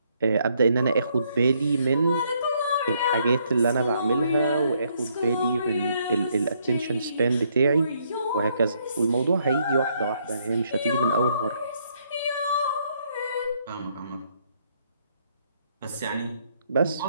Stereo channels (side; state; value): both; inverted; correlation -0.72